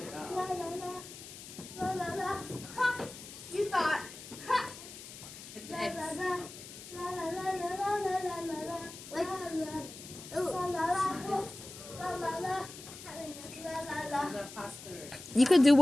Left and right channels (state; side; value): noise; left; hiss, 14 dB below the sound